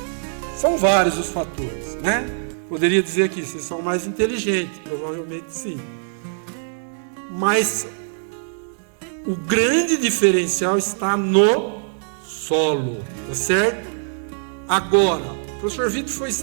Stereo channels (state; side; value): silent; left; digital silence